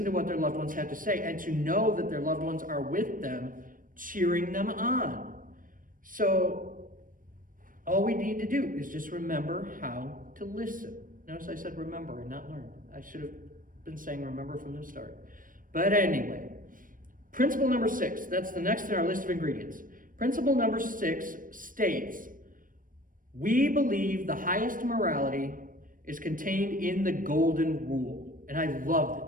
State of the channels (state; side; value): late; left; 0.40 ms